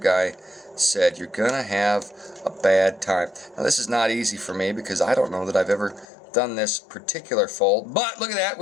said, you're going to have a bad time. Now, this is not easy for me because I don't know that I've ever done this particular fold. But look at that,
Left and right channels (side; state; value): right; drops out; at 6.1 s